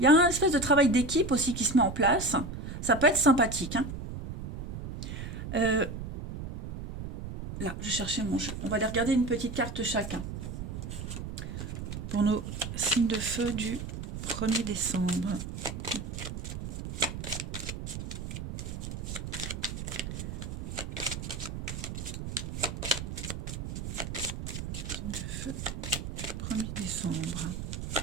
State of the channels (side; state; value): right; noise; rumble, 7 dB below the sound